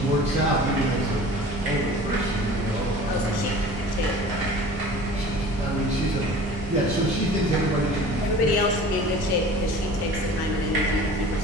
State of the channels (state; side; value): normal; both; correlation 0.42